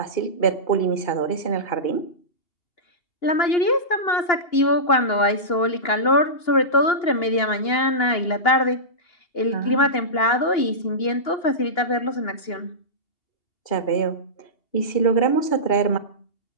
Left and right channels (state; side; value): late; right; 2.9 ms